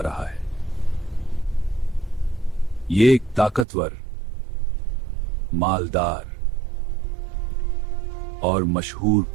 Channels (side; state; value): left; drops out; at 3.7 s